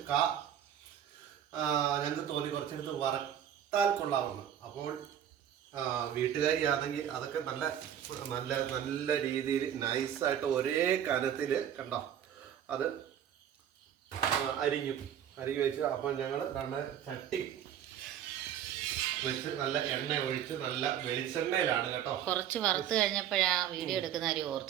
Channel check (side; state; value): left; quieter; 9.9 dB